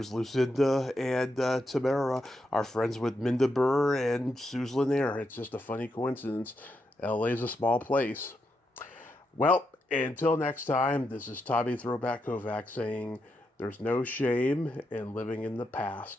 Lucinda and Tamara, are friends with Minda Burr and Suze Lanier. It's just a funny coincidence. LA's a small place. Well, until next time, this is Tommy Throwback Kovac saying there's no shame in living in the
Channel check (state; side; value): normal; both; correlation 0.83